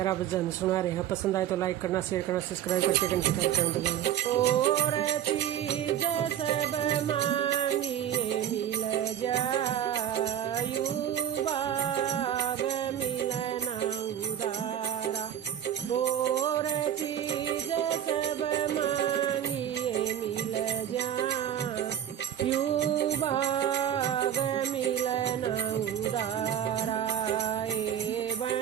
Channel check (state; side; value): quieter; left; 10.3 dB